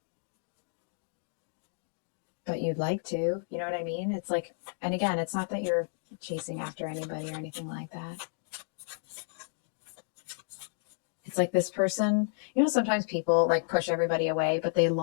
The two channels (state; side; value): silent; right; digital silence